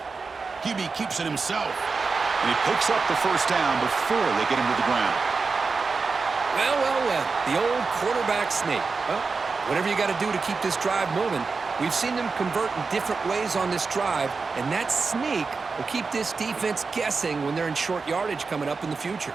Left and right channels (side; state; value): left; quieter; 4.5 dB